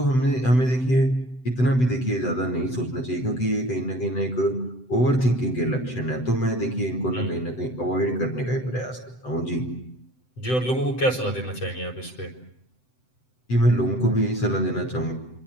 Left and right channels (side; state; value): right; late; 7.9 ms